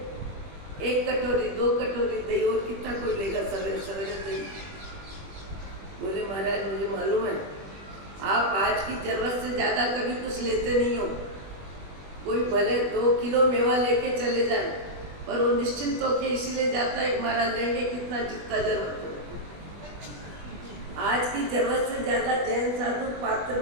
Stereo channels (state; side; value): late; left; 20 ms